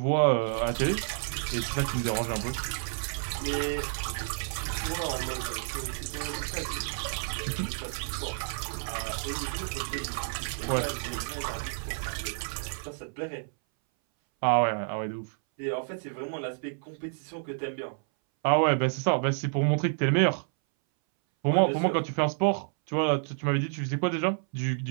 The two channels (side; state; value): left; silent; 58 dB below the other